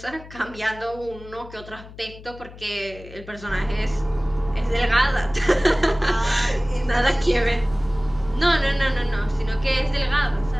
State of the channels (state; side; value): noise; left; hum, 17 dB below the sound